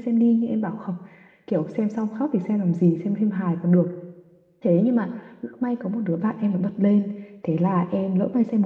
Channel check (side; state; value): both; identical; correlation 1.00